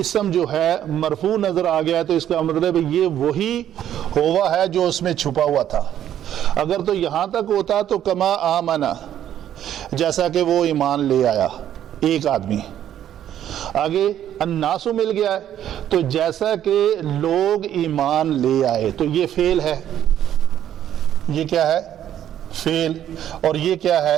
اسم جو ہے مرفوع نظر آ گیا ہے تو اس کا مطلب یہ وہی ہوا ہے جو اس میں چھپا ہوا تھا. اگر تو یہاں تک ہوتا تو کما آمنا، جیسا کہ وہ ایمان لے آیا ایک آدمی. آگے الناسو مل گیا ہے تو جیسا کہ لوگ ایمان لے آئے، تو یہ فعل ہے. یہ کیا ہے؟ فعل. اور یہ کیا ہے؟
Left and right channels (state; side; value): quieter; left; 10.9 dB